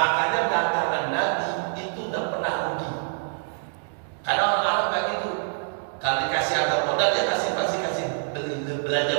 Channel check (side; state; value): left; silent; digital silence